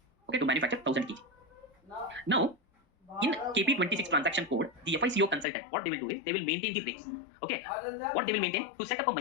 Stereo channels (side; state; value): right; drops out; at 5.5 s